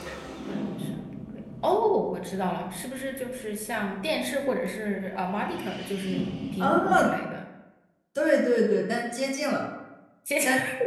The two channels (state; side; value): identical; both; correlation 1.00